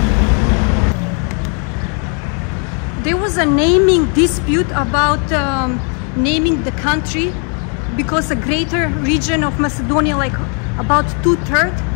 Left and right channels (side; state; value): right; quieter; 39.8 dB